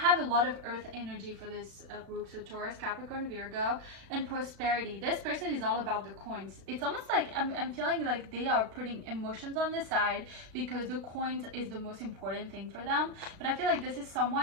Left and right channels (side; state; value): left; late; 36 ms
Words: a lot of earth energy for this group. So Taurus, Capricorn, Virgo, and prosperity. This person is all about the coins. It's almost like I'm feeling like they are putting emotions on the side, because the coins is the most important thing for them. But I feel like this is